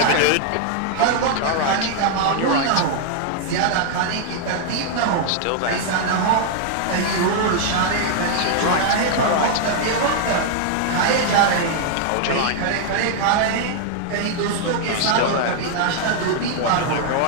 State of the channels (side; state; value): both; different; correlation 0.00